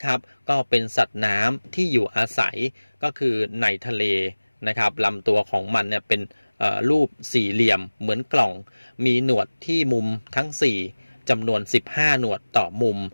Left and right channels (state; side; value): inverted; both; correlation -1.00